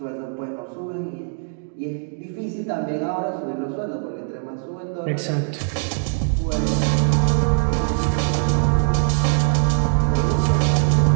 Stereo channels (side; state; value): left; silent; 65 dB below the other